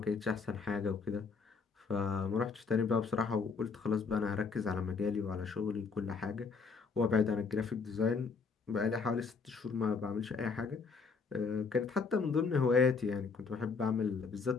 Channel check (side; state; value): right; quieter; 5.0 dB